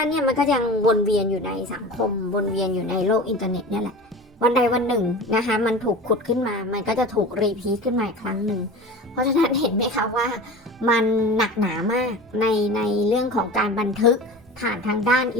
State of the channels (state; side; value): normal; both; correlation 0.34